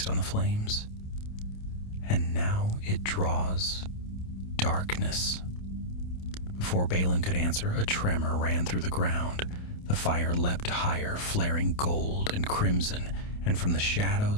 on the flames. "And now it draws darkness." Before Balin could answer, a tremor ran through the ground. The fire leapt higher, flaring gold and crimson, and from the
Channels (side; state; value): right; late; 28 ms